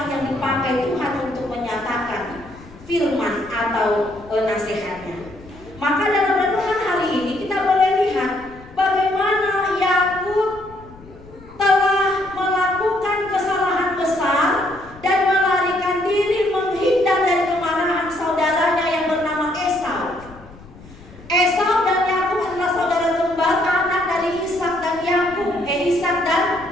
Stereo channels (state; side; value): noise; left; rumble, 21 dB below the sound